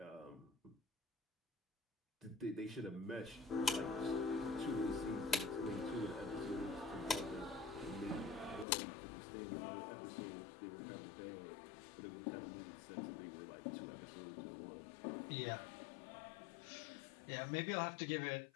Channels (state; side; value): drops out; right; at 8.7 s